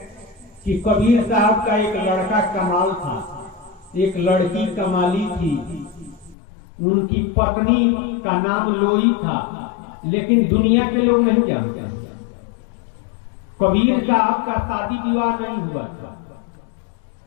कि कबीर साहब का एक लड़का कमाल था, एक लड़की कमाली थी, उनकी पत्नी का नाम लोई था, लेकिन दुनिया के लोग नहीं जानते। कबीर साहब का शादी विवाह नहीं हुआ था,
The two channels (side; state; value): right; drops out; at 6.4 s